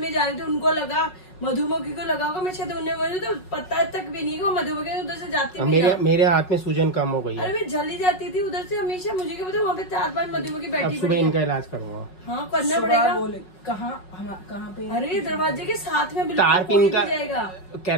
जा रही थी, उनको लगा मधुमक्खी को लगा होगा, मैं शायद उन्हें बोली तो पता तक भी नहीं कि वो मधुमक्खी उधर से जाती है। मेरे हाथ में सूजन कम हो गई है। अरे मैं जल्दी जाती थी उधर से हमेशा, मुझे क्या पता वहाँ पे 4-5 मधुमक्खी बैठी। सुबह इनका इलाज करूंगा। हाँ करना पड़ेगा। कहाँ पे? अरे दरवाजे के साथ में तार पिन का जाएगा,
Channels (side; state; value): right; late; 5.4 ms